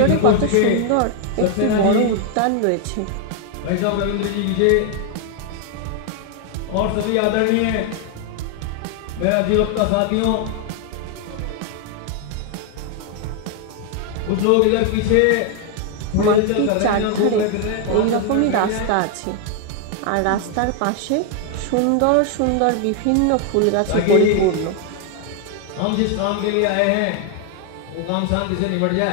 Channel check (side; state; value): both; different; correlation 0.01